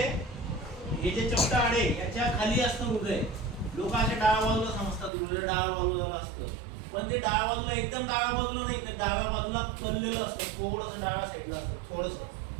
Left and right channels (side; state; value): left; drops out; at 5.1 s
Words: हे जे चपटा हाड आहे, याच्या खाली असतं हृदय. लोक असे डाव्या बाजूला समजतात, हृदय डाव्या बाजूला असतं, पण ते डाव्या बाजूला, एकदम डाव्या बाजूला नाही, तर डाव्या बाजूला कललेलं असतं, थोडंसं डाव्या साईडला असतं, थोडंसं,